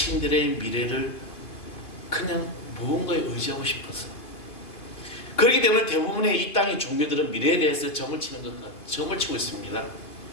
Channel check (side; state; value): right; late; 2.7 ms